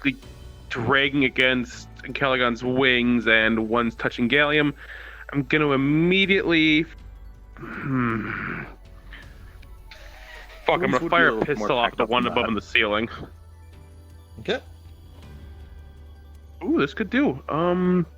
dragging against Ancalagon's wings and one's touching Gallium, I'm going to immediately. Fuck, I'm Wounds gonna would be fire a a little pistol more off packed the up one than above that. in the ceiling. Okay. Ooh, this could do.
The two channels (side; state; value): both; identical; correlation 1.00